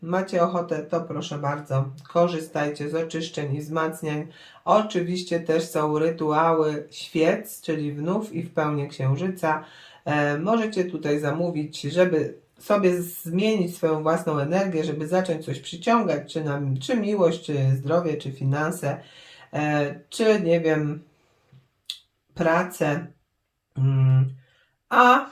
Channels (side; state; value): both; identical; correlation 1.00